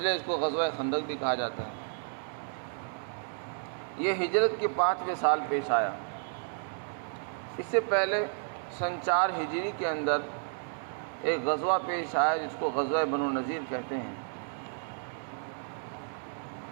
اس کو غزوہ خندق بھی کہا جاتا ہے۔ یہ ہجرت کے 5ویں سال پیش آیا۔ اس سے پہلے سن 4 ہجری کے اندر ایک غزوہ پیش آیا جس کو غزوہ بنو نذیر کہتے ہیں۔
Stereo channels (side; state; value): left; silent; digital silence